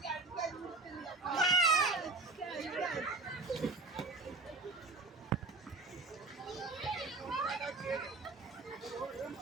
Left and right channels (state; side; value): quieter; left; 3.6 dB